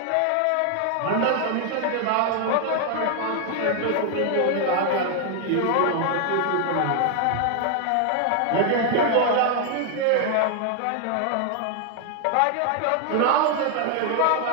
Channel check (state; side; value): different; both; correlation 0.00